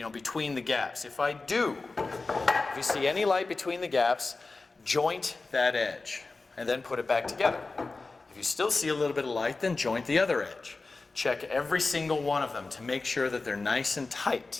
between the gaps. If I do, if you see any light between the gaps, joint that edge and then put it back together. If you still see a little bit of light, then joint the other edge. Check every single one of them to make sure that they're nice and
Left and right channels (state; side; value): quieter; right; 3.7 dB